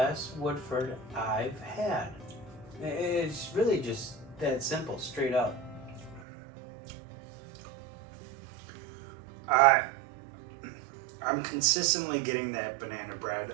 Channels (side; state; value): left; drops out; at 6.2 s